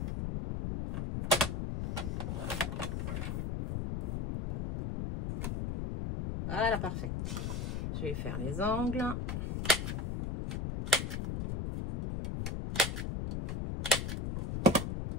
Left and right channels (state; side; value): noise; left; rumble, 2 dB below the sound